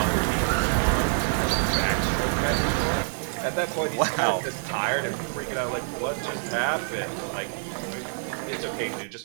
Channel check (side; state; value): left; silent; digital silence